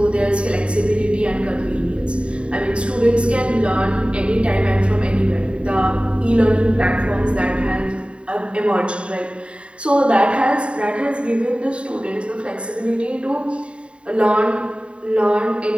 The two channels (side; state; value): left; late; 0.057 ms